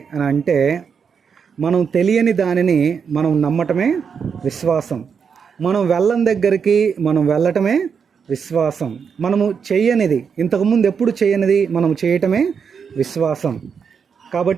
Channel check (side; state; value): left; quieter; 6.5 dB